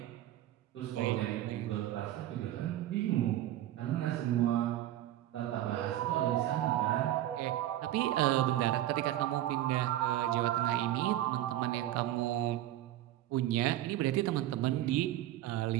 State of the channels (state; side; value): quieter; left; 13.6 dB